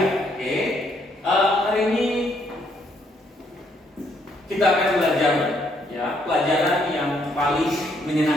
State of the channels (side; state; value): both; normal; correlation 0.71